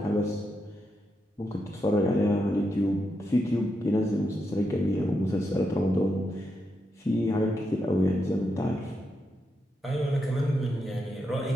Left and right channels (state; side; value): normal; both; correlation 0.84